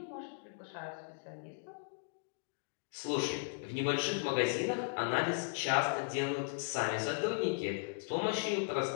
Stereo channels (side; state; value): right; silent; digital silence